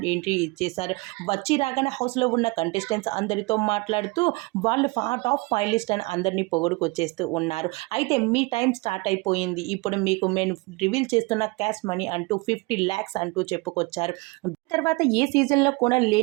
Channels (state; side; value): quieter; left; 25.7 dB